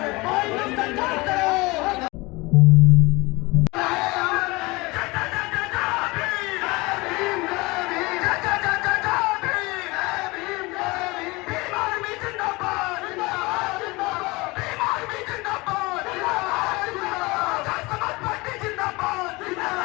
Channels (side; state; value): right; quieter; 23.6 dB